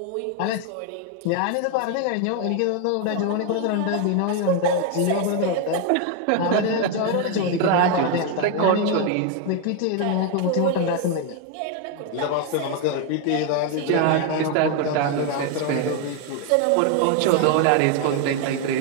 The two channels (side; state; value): both; different; correlation 0.01